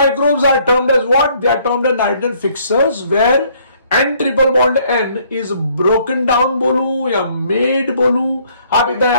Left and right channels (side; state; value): both; inverted; correlation -0.64